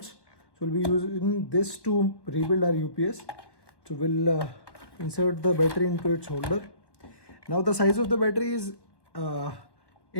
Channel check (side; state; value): right; late; 1.2 ms